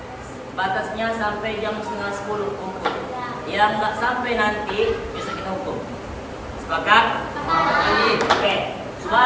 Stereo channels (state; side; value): identical; both; correlation 1.00